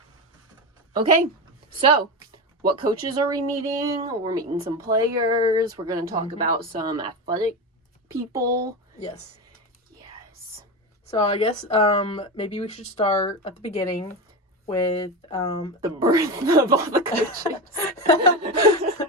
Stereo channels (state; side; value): normal; both; correlation 0.19